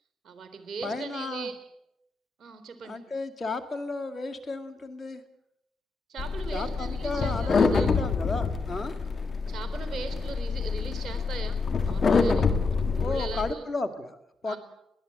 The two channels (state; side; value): quieter; right; 3.7 dB